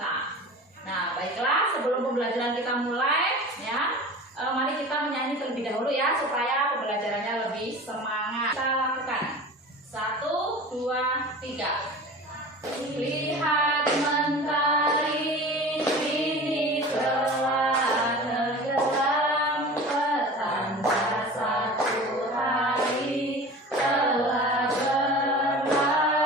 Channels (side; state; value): both; normal; correlation 0.37